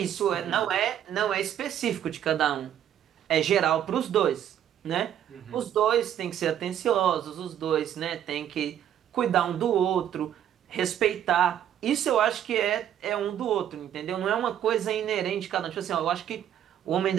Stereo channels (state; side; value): quieter; left; 10.3 dB